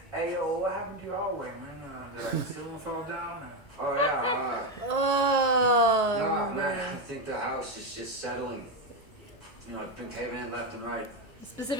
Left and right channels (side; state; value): both; normal; correlation 0.09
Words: Hey, yo, what happened to your hallway, man? Did like the ceiling fall down? Oh, yeah. Oh. No, man, I think the house is just settling. You know, it's been caving in left and right.